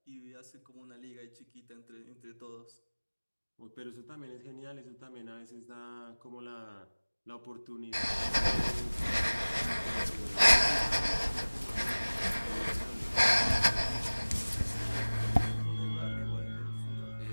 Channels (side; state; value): both; inverted; correlation -1.00